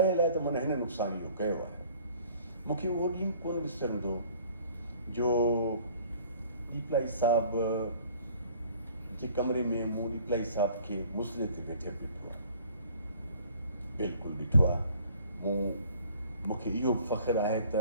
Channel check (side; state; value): both; inverted; correlation -0.54